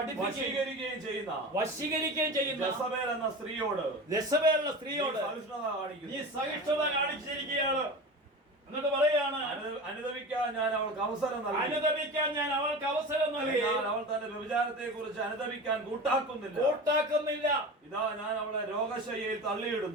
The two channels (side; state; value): both; normal; correlation 0.31